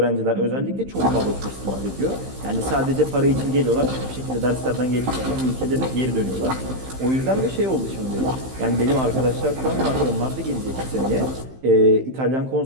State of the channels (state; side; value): late; left; 15 ms